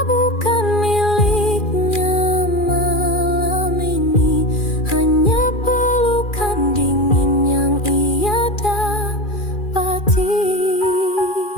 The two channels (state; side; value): late; right; 2.4 ms